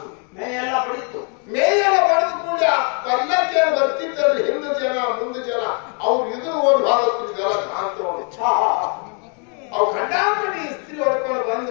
ಮೇಯೆಲ್ಲ ಬಡಿತು. ಮೇಯೆಲ್ಲ ಬಡಿದ ಕೂಡ ಪಲ್ಲಕ್ಕಿ ಬರ್ತಿದ್ದಲ್ಲಿ ಹಿಂದೆ ಜನ ಮುಂದೆ ಜನ ಅವ್ರು ಇದು ಓಡಿ ಭಾಗತ್ತಿದ್ದಲ್ಲ ಕಾಣ್ತೋಡು. ಅವು ಗಂಡಾಪಡಿ ಇಸ್ತ್ರಿ ಹೊಡ್ಕೊಂಡು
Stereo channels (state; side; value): quieter; right; 38.5 dB